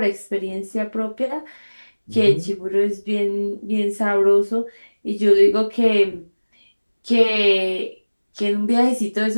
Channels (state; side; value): inverted; both; correlation -1.00